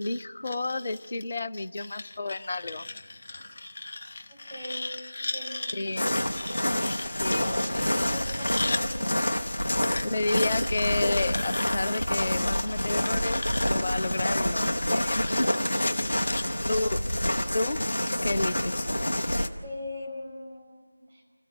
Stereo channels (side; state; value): both; inverted; correlation -0.96